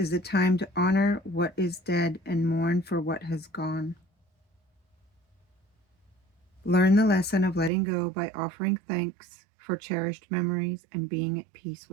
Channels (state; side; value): drops out; left; at 7.7 s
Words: a time to honor what is dead and mourn for what has gone. Learn the lesson of letting go by offering thanks for cherished memories and being at peace